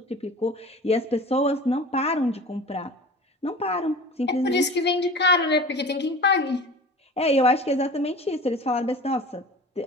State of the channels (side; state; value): both; normal; correlation 0.38